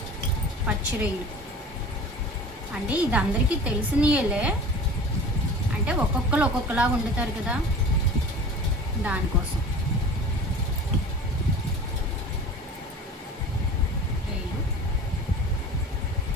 పచ్చి రొయ్యలు అంటే ఇది అందరికీ తెలిసినయలే, అంటే ఒక్కొక్కరు ఒక్కొక్కలాగా వండుతారు కదా, దానికోసం.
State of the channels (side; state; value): both; normal; correlation 0.39